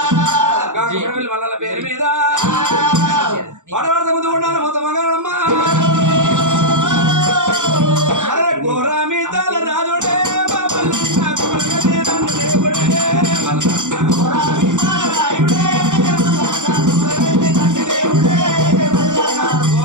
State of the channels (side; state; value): left; late; 0.86 ms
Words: మల్లల పేరు మీద పాటపడత ముందు ఉండాలి మొత్తం మగాడమ్మ గోరామి తల రాజుడే